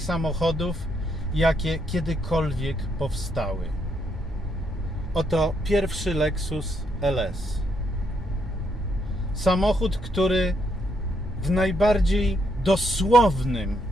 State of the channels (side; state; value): both; normal; correlation 0.76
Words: samochodów, jakie kiedykolwiek powstały. Oto pierwszy Lexus LS. Samochód, który w najbardziej dosłownym